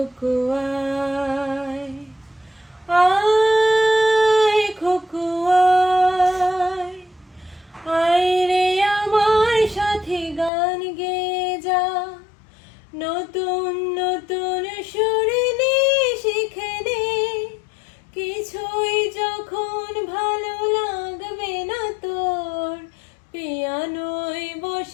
আয়, আয় খুকু আয়, আয় রে আমার সাথে গান গেয়ে যা, নতুন নতুন সুরে নে শিখে নে, কিছুই যখন ভালো লাগবে না তোর, পিয়ানোয়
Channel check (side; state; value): right; drops out; at 10.5 s